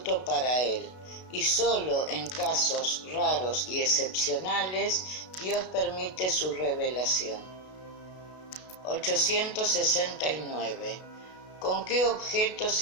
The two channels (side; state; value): right; late; 32 ms